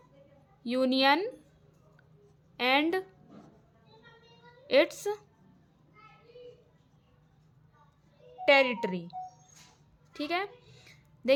Union and its territory. ठीक है,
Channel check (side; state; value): both; identical; correlation 1.00